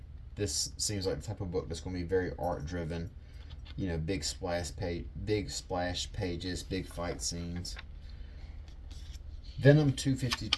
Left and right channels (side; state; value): both; identical; correlation 1.00